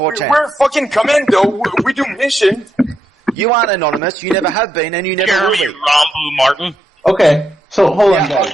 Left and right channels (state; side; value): normal; both; correlation 0.81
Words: We're fucking commando. We do mission. You aren't anonymous. You never have been, and you never will be. Rambo Martin. Okay, so hold on,